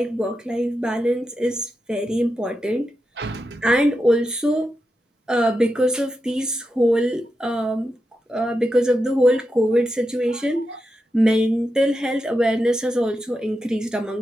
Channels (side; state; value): both; normal; correlation 0.88